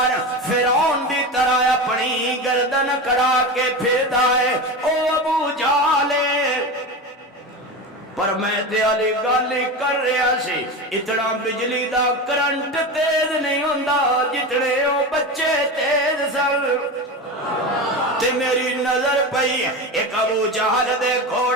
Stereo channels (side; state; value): both; normal; correlation 0.24